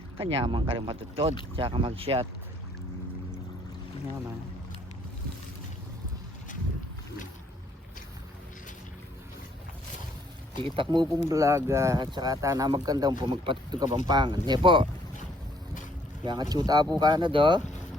Kanyaman ka rin matutod tsaka mag shot. Kanyaman kitak mo pong vlog at saka tana magkandang po magpatutog Kapampangan hindi po kaya nga tsuta po ka na do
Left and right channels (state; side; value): normal; both; correlation 0.65